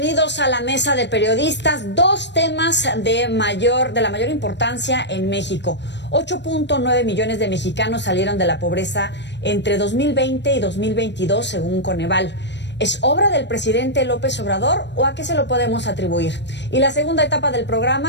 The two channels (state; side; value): late; right; 0.51 ms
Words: a la mesa de periodistas. Dos temas de la mayor importancia en México. 8.9 millones de mexicanos salieron de la pobreza entre 2020 y 2022, según Coneval. ¿Es obra del presidente López Obrador o a qué se lo podemos atribuir? Y la segunda etapa del